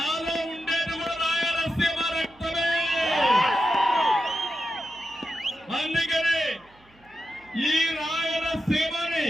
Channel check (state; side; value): noise; right; hum, 30 dB below the sound